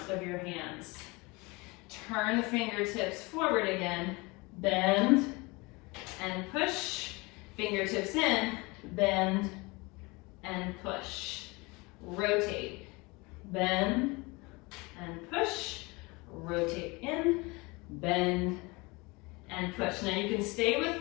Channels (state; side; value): quieter; right; 25.4 dB